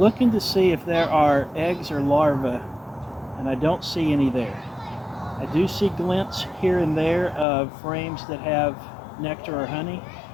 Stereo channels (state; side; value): drops out; right; at 7.5 s